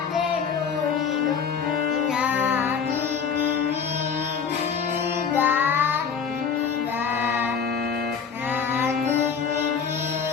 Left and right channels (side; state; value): right; quieter; 6.5 dB